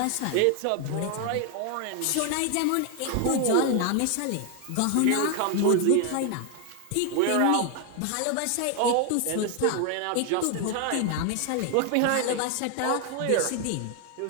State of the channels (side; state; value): both; different; correlation 0.00